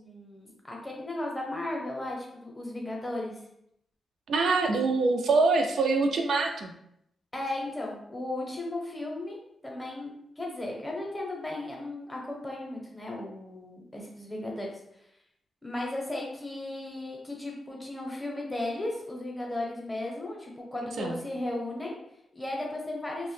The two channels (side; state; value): both; normal; correlation 0.78